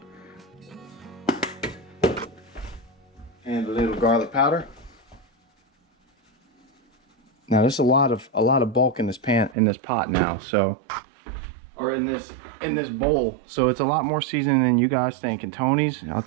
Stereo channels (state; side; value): drops out; left; at 9.6 s